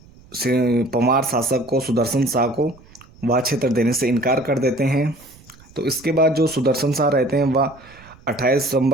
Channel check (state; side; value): noise; right; rumble, 25 dB below the sound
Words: परमार शासक को, सुदर्शन शाह को वह क्षेत्र देने से इनकार कर देते हैं। तो इसके बाद जो सुदर्शन शाह रहते हैं वह 28